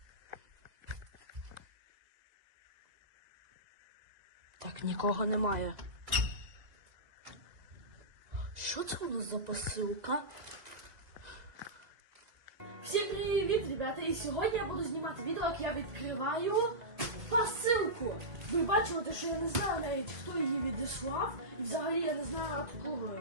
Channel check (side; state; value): left; late; 2.0 ms